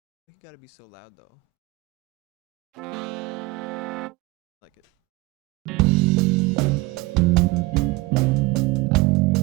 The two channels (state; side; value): quieter; left; 22.4 dB